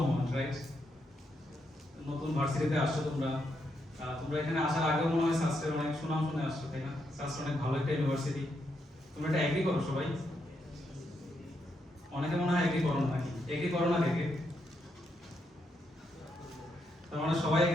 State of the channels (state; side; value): normal; both; correlation 0.80